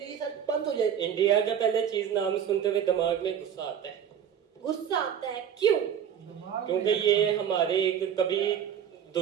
ये सब बंद हो जाए। इंडिया का पहले चीज नाम सुनते हुए दिमाग में गुस्सा आता है। गुस्सा आता है क्यों? क्योंकि ये हमारे एक कभी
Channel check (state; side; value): quieter; left; 8.7 dB